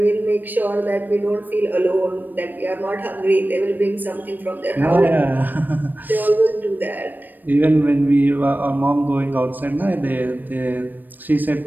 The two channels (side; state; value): left; late; 0.090 ms